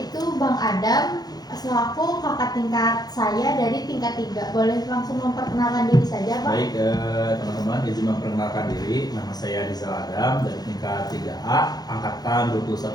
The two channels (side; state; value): right; late; 0.19 ms